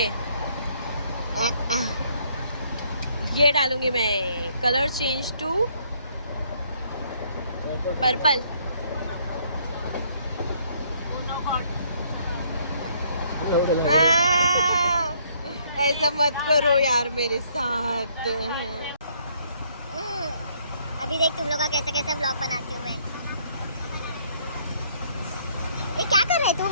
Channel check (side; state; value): both; inverted; correlation -0.66